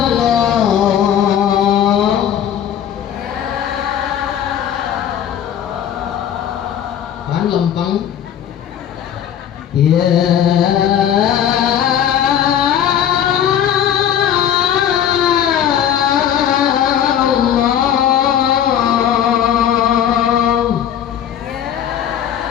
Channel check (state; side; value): quieter; right; 9.7 dB